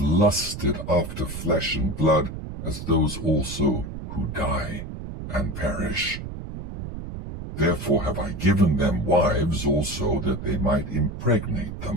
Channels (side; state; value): right; noise; rumble, 9 dB below the sound